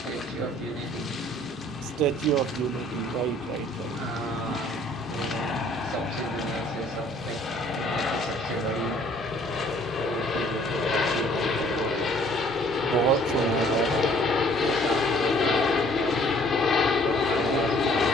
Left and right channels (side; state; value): both; normal; correlation 0.58